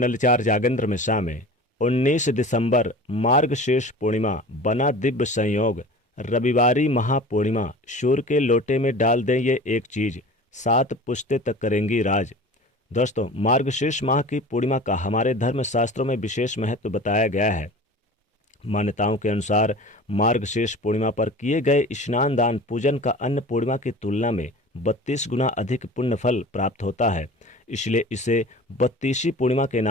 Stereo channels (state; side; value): normal; both; correlation 0.39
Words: चार जागेंद्र मिश्रा में। 19 दिसंबर मार्गशीर्ष पूर्णिमा बना दिव्य संयोग। रविवारी महापूर्णिमा, सूर्य के लोटे में डाल दें ये एक चीज, 7 पुश्ते तक करेंगी राज। दोस्तों, मार्गशीर्ष माह की पूर्णिमा का हमारे धर्म शास्त्रों में विशेष महत्व बताया गया है। मान्यताओं के अनुसार मार्गशीर्ष पूर्णिमा पर किए गए स्नान दान पूजन का अन्य पूर्णिमा की तुलना में 32 गुना अधिक पुण्य फल प्राप्त होता है। इसलिए इसे 32वीं पूर्णिमा के